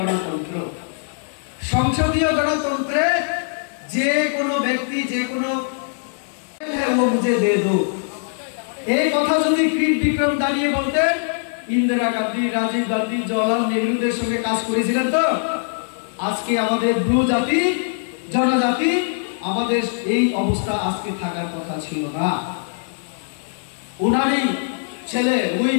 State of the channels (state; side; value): silent; right; digital silence